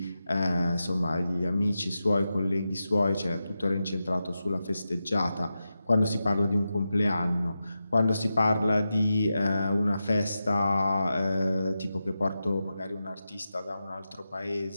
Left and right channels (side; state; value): both; inverted; correlation -0.91